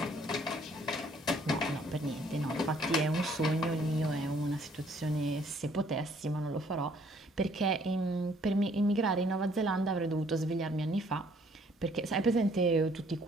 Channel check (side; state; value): both; normal; correlation 0.62